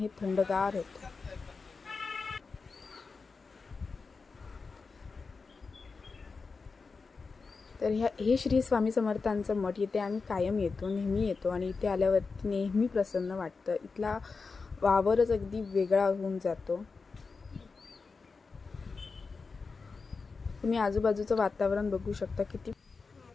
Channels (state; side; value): quieter; right; 4.5 dB